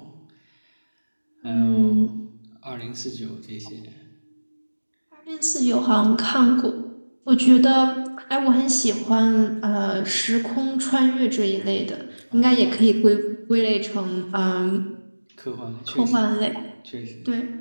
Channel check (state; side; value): inverted; both; correlation -1.00